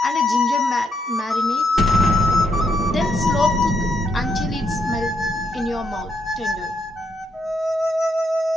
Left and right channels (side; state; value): both; normal; correlation 0.77